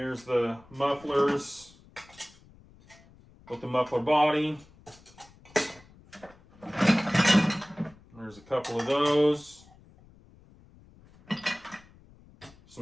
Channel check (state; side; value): noise; left; rumble, 25 dB below the sound